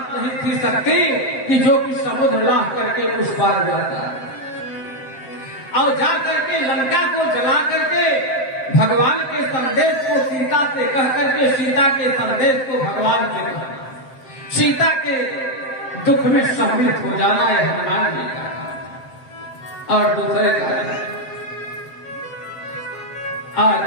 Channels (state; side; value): late; right; 7.5 ms